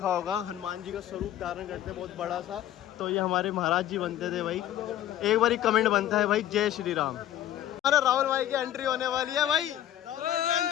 होगा हनुमान जी का स्वरूप धारण करते हैं बहुत बड़ा सा, तो ये हमारे महाराज जी बनते थे भाई। एक बार कमेंट बनता है भाई, जय श्री राम। अरे राहुल भाई की एंट्री होने वाली है भाई,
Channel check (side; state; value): right; quieter; 12.2 dB